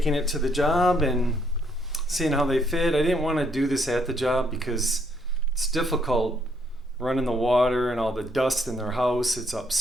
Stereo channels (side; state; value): both; normal; correlation 0.70